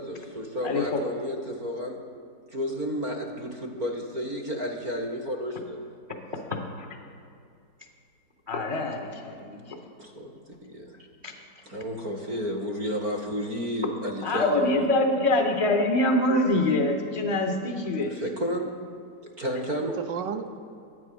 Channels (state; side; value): late; left; 4.4 ms